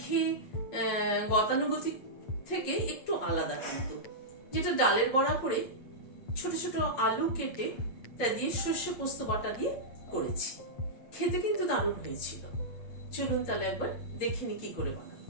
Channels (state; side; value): late; right; 8.6 ms